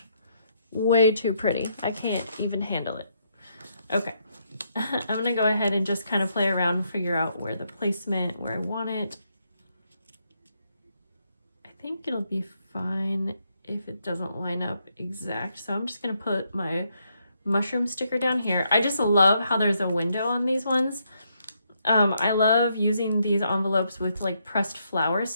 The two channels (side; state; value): both; inverted; correlation -0.77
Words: way too pretty. I can't even handle it. Okay, I'm gonna go ahead and just kind of play around and figure out where the placement, where I want it. I think it'll be fine if it doesn't line up exact. So I'm just gonna put my mushroom sticker down here. I just love how there's a window on these ones. I love using these envelopes with like pressed flower